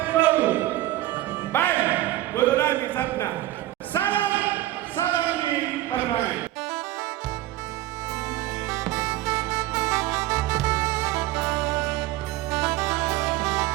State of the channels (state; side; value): quieter; left; 15.6 dB